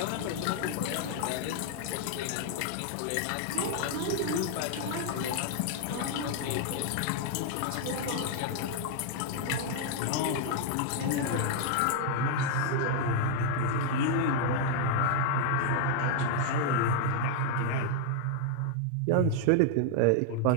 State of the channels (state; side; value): different; both; correlation 0.00